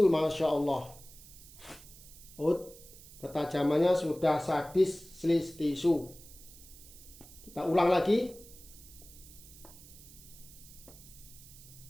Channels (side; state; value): right; noise; hiss, 19 dB below the sound